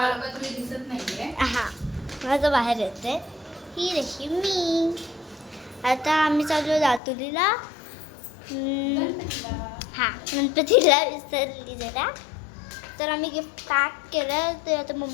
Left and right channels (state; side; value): drops out; right; at 7.0 s